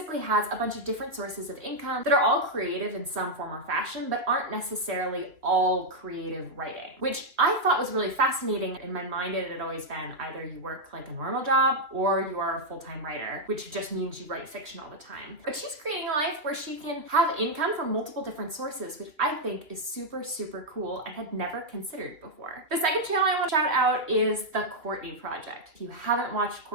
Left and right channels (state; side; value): late; left; 2.7 ms